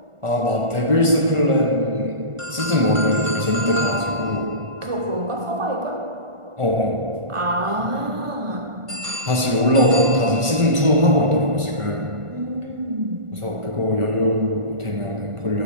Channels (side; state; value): left; late; 1.4 ms